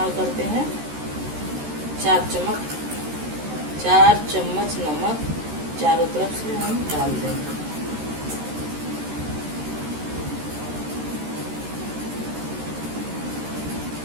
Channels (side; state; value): left; late; 13 ms